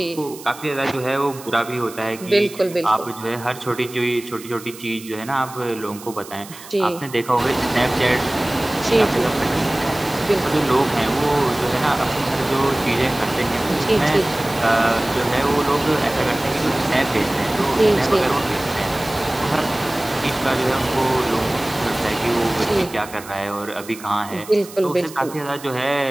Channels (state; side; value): noise; right; hiss, 17 dB below the sound